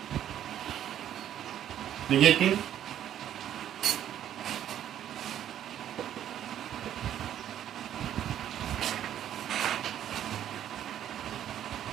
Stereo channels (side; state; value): left; quieter; 10.8 dB